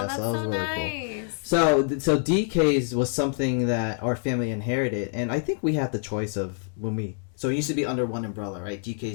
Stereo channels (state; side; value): silent; right; 56 dB below the other